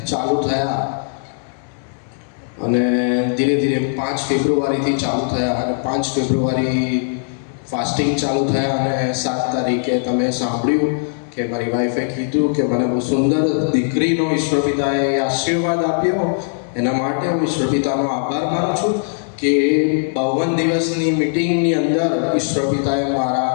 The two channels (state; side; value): silent; right; 66 dB below the other